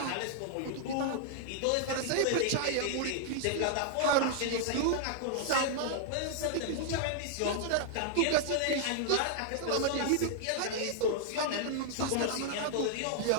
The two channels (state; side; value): different; both; correlation -0.01